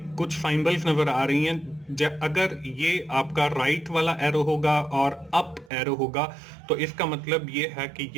कुछ सिंबल्स नजर आ रही हैं। अगर ये आपका राइट वाला एरो होगा और अप एरो होगा तो इसका मतलब ये है कि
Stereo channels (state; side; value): drops out; left; at 5.7 s